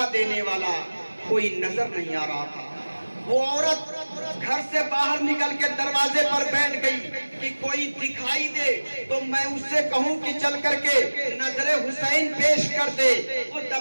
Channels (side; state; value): both; inverted; correlation -1.00